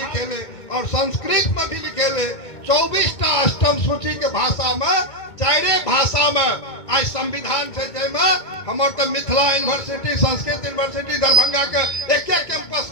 और संस्कृत में भी लिखेले। 24टा अष्टम सूची के भाषा में 4 भाषा में आज संविधान से जैमे हमार तो मिथिला यूनिवर्सिटी संस्कृत यूनिवर्सिटी दरभंगा के एक कैंपस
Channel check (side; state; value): right; late; 2.2 ms